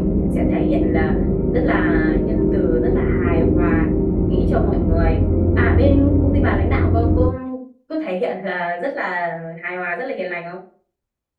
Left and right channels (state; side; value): identical; both; correlation 1.00